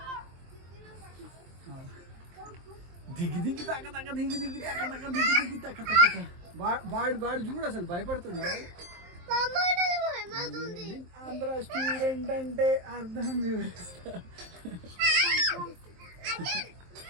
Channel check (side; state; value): left; late; 23 ms